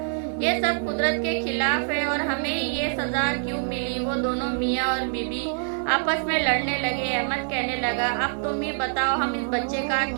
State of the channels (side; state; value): left; silent; digital silence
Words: ये सब कुदरत के खिलाफ है और हमें ये सजा क्यों मिली? वो दोनों मियाँ और बीबी आपस में लड़ने लगे। अहमद कहने लगा, अब तुम ही बताओ हम इस बच्चे का